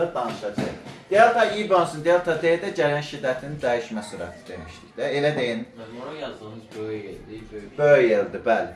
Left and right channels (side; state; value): both; identical; correlation 1.00